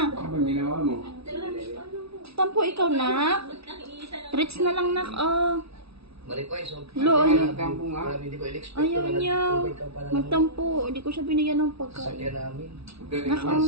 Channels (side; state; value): left; late; 0.77 ms